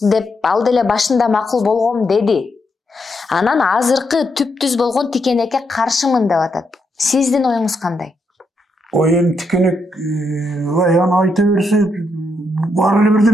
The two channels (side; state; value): both; normal; correlation 0.80